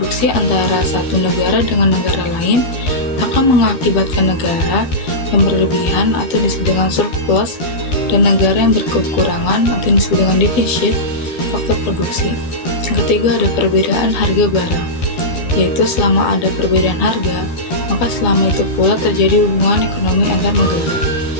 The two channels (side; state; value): right; late; 13 ms